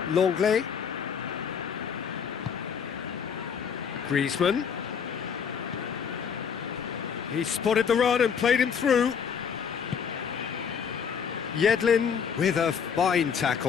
Longley. Griezmann. He spotted the run and played him through. Yedlin with a fine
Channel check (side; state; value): right; quieter; 7.0 dB